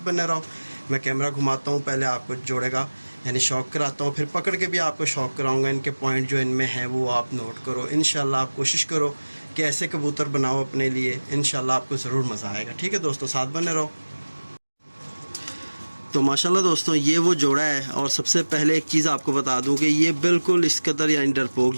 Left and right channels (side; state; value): both; inverted; correlation -1.00